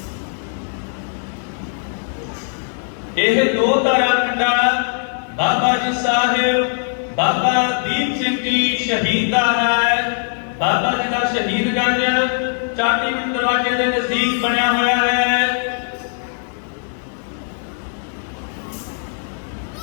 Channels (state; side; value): silent; right; digital silence